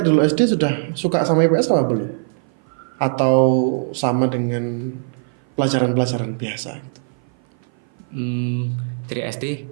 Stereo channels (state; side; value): silent; left; 56 dB below the other